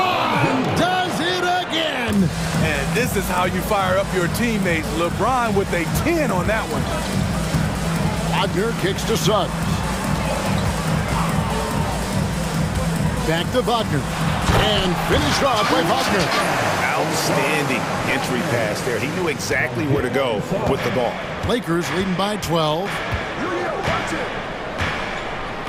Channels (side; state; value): both; identical; correlation 1.00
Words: does it again. And this is how you fire up your teammates. LeBron with a 10 on that one. Wagner kicks to Suggs. Back to Wagner. And finished off by Wagner. Outstanding entry pass there. He knew exactly where to go with the ball. Lakers leading by 12.